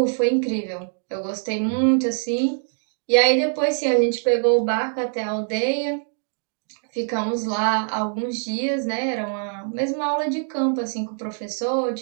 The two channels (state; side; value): silent; left; 60 dB below the other